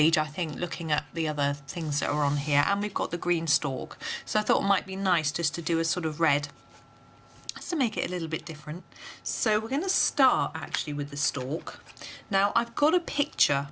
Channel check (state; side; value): identical; both; correlation 1.00